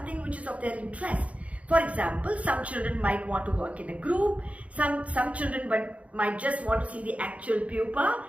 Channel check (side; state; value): left; late; 0.065 ms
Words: which is of their interest. For example, some children might want to work in a group, some children might just want to see the actual pupa